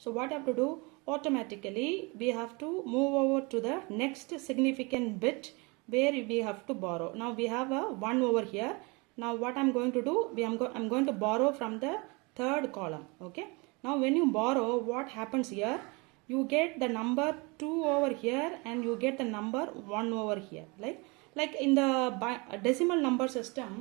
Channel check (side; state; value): left; quieter; 28.0 dB